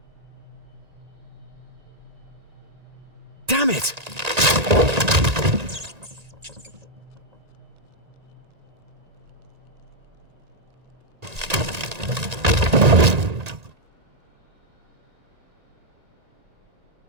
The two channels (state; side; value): late; left; 1.9 ms